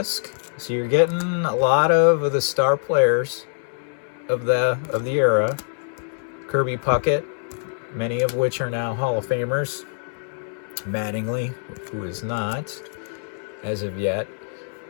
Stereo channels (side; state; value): right; silent; digital silence